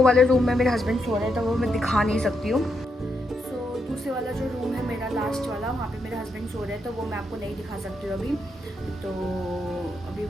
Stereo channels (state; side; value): normal; both; correlation 0.80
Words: वाले रूम में मेरे हस्बैंड सो रहे थे, वो मैं दिखा नहीं सकती हूँ। सो दूसरे वाला जो रूम है मेरा लास्ट वाला, वहाँ पे मेरे हस्बैंड सो रहे हैं तो वो मैं आपको नहीं दिखा सकती हूँ अभी। तो अभी